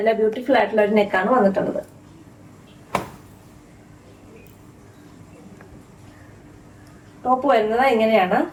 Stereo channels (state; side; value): identical; both; correlation 1.00